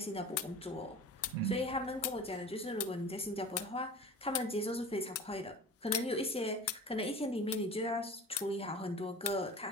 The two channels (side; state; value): both; normal; correlation 0.38